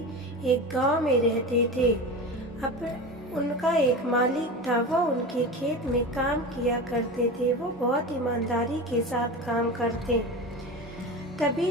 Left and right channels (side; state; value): both; normal; correlation 0.27